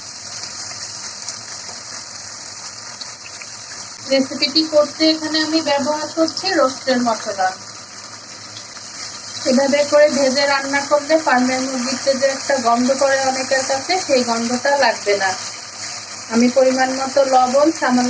রেসিপিটি করতে এখানে আমি ব্যবহার করছি রোস্টের মশলা। এভাবে করে ভেজে রান্না করলে ফার্মের মুরগিতে যে একটা গন্ধ করে অনেকের কাছে, সেই গন্ধটা লাগবে না। আমি পরিমাণ মতো লবণ,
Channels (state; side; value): identical; both; correlation 1.00